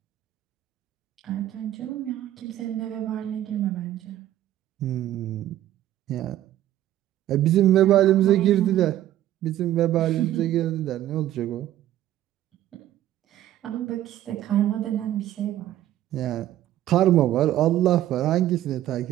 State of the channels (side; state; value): left; quieter; 13.0 dB